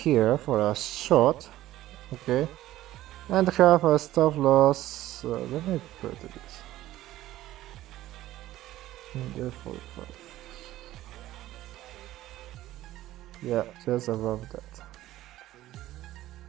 for a shot, okay, and have a stop loss. Let me put this in there, 45. Yeah, just above that.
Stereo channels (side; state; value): left; quieter; 14.9 dB